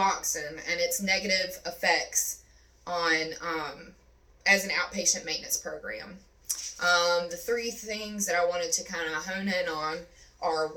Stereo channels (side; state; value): both; identical; correlation 1.00